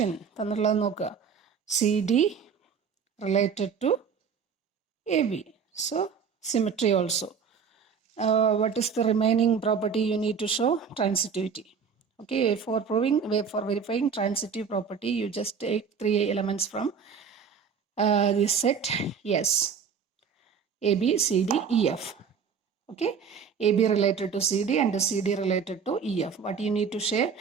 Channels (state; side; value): quieter; left; 6.5 dB